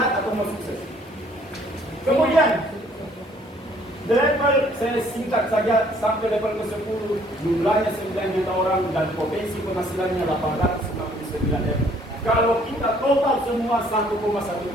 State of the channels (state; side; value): normal; both; correlation 0.61